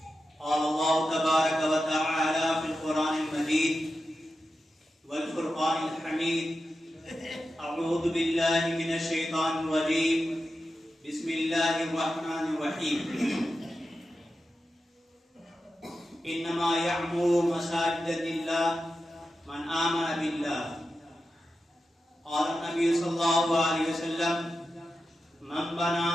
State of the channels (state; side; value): normal; both; correlation 0.91